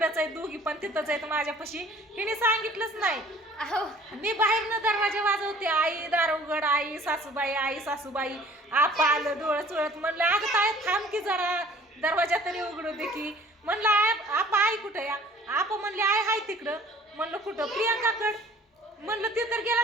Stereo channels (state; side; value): normal; both; correlation 0.52